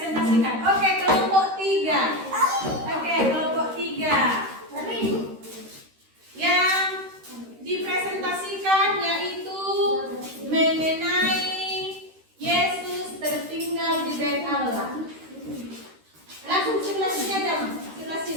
Oke, kelompok 3. Oke, kelompok 3. Yang dipresentasikan yaitu mengenai Yesus tertinggal di bait Allah. Langsung sebelah sini aja, sebelah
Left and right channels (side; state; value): left; late; 13 ms